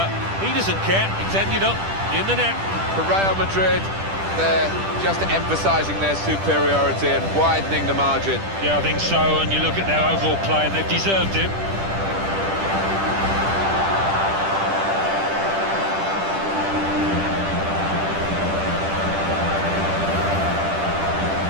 he doesn't care. It's ended up in the net. For Real Madrid, they're just emphasising their superiority and widening the margin. Yeah, I think so, and you look at their overall play and they've deserved it.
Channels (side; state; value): left; late; 10 ms